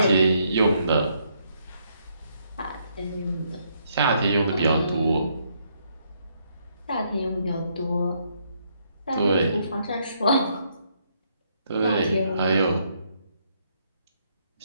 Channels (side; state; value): both; inverted; correlation -0.73